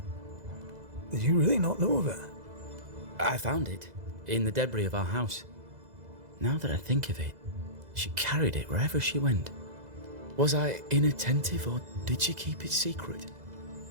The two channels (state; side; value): late; left; 2.0 ms